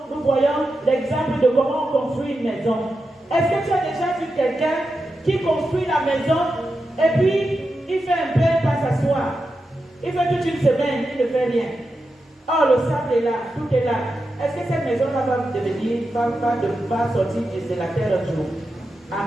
voyons l'exemple de comment on construit une maison. Est-ce que tu as déjà vu quelqu'un qui construit la maison et puis il fait un peu, il passe s'asseoir. Il fait toute une semaine, il ne fait rien. Oh, le sable est là, tout est là. Est-ce que cette maison-là va sortir de la terre un jour?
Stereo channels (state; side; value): normal; both; correlation 0.89